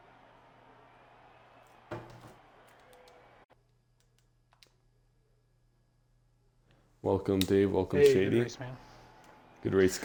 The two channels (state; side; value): identical; both; correlation 1.00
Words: Welcome, Dave. Welcome, hey, Shady. Good race, man. Good race,